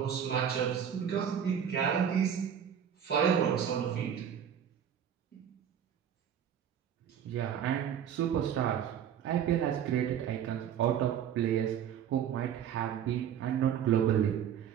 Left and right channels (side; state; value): left; quieter; 8.9 dB